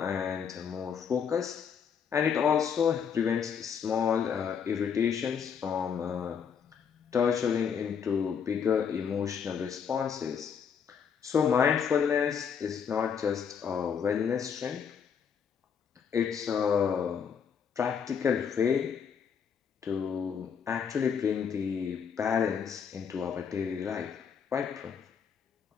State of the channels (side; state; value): right; quieter; 7.1 dB